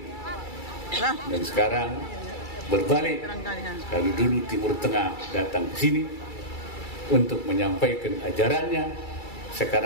Dan sekarang berbalik, kalau dulu Timur Tengah datang ke sini untuk menyampaikan ajarannya,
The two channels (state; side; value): late; right; 2.3 ms